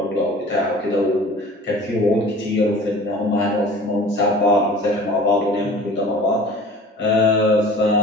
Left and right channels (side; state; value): both; normal; correlation 0.43